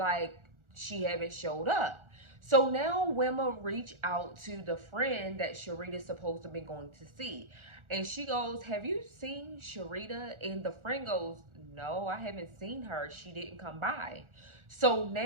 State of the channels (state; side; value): late; left; 1.4 ms